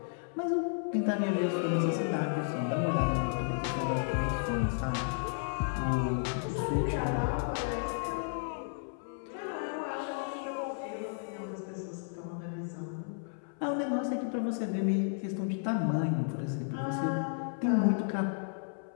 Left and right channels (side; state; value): right; silent; 56 dB below the other